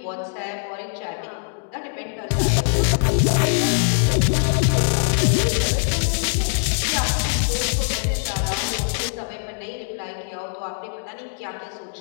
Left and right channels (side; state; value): right; silent; digital silence